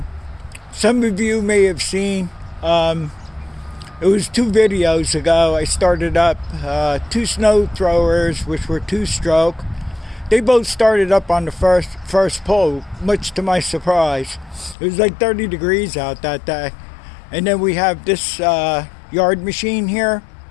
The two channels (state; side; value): drops out; right; at 14.8 s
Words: some of you may have seen, it was 2 videos ago, I started up 2 snow throwers which were 2-stroke. They both started up on the first pull, much to my surprise. It was like 30 degrees out that day. And then we have this yard machine here